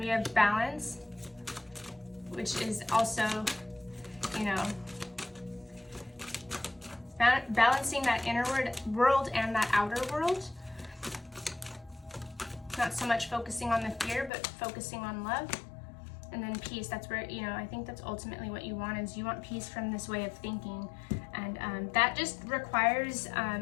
have balance, which is also, you know, balancing that inner world and that outer world. Not so much focusing on the fear, but focusing on love. And then peace, that's where, you know, I think that's ultimately what you want, is you want peace from this way of thinking. And that just requires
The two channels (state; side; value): drops out; right; at 14.3 s